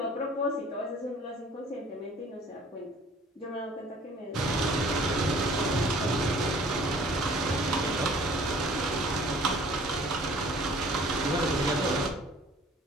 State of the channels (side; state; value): both; normal; correlation 0.52